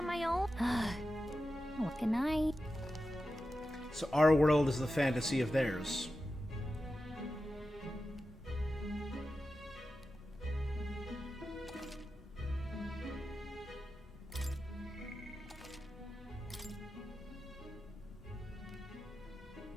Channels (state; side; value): normal; both; correlation 0.92